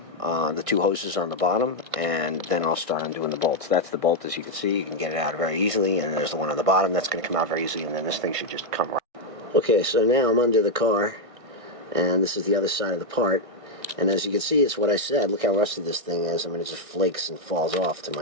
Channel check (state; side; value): late; left; 1.6 ms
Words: the 2 hoses on the bottom, and then I'll start undoing the bolts. That's the bolt, as you can see. You can get it out very easily, and there's the one on the bottom that's going to come out very easily, and then this thing should just come right. Okay, so now I'm under the car, and this is the other side of the part, and as you can see, it's what I said. Look how rusty this thing is. I mean, it just flakes and falls off to